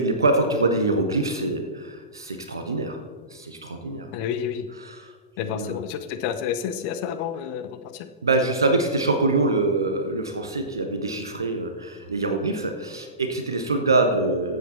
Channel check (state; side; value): inverted; both; correlation -0.32